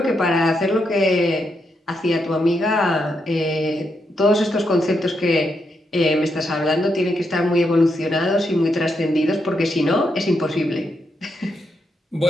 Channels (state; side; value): normal; both; correlation 0.81